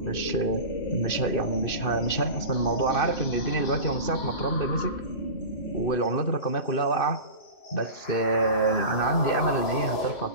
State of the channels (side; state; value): right; late; 2.6 ms